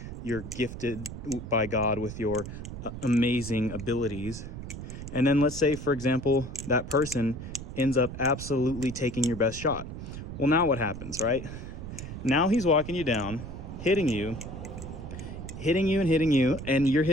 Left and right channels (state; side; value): noise; right; rumble, 9 dB below the sound